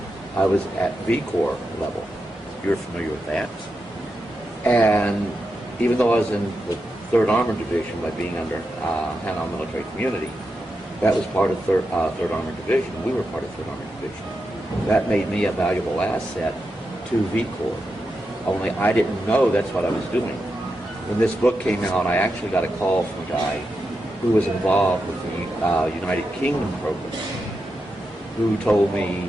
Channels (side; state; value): both; normal; correlation 0.87